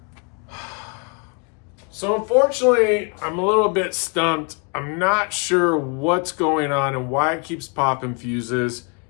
So unfortunately, I'm a little bit stumped. I'm not sure what's going on and why it keeps popping fuses.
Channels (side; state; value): right; quieter; 35.6 dB